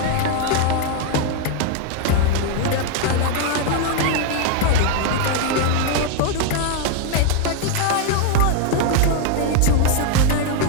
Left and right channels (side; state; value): both; different; correlation 0.01